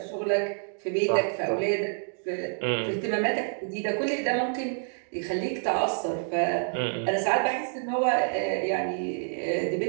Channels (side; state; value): left; silent; 59 dB below the other